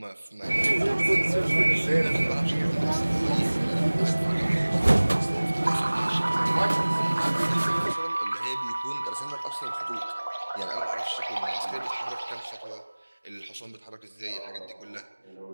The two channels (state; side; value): inverted; both; correlation -1.00